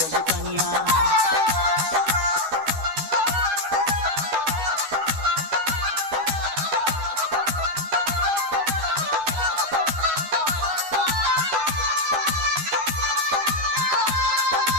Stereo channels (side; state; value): left; late; 12 ms